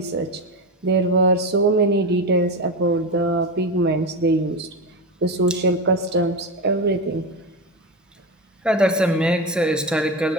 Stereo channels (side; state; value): both; normal; correlation 0.18